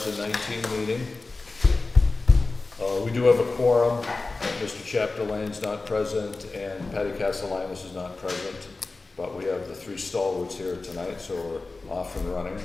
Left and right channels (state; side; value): quieter; right; 3.6 dB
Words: meeting. We do have a quorum. Mr. Chapdelaine's not present and Patty Castellanos is not present, but we have the three stalwarts here tonight, so we're off and running.